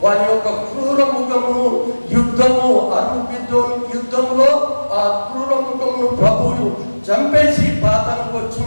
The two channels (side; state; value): both; inverted; correlation -1.00